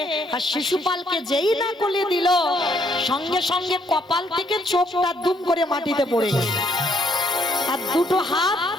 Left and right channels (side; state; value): both; normal; correlation 0.69